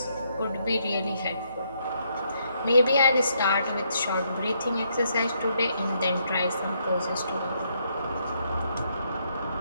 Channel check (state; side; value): inverted; both; correlation -0.74